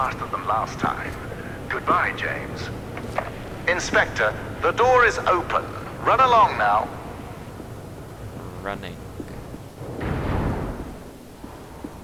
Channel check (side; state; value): both; identical; correlation 1.00